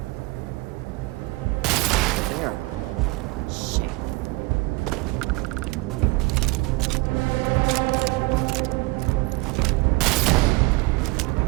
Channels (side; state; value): left; quieter; 23.7 dB